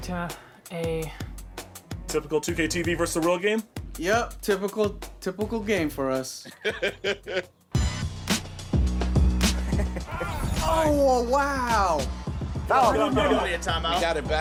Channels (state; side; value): identical; both; correlation 1.00